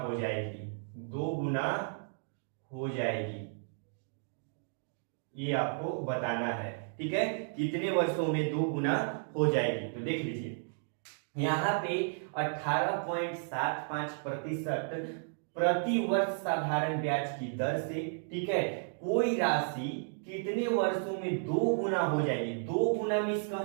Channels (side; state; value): left; silent; digital silence